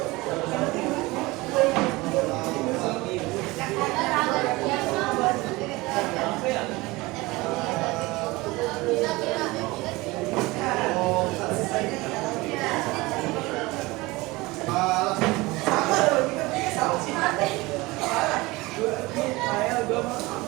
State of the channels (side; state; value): left; quieter; 21.8 dB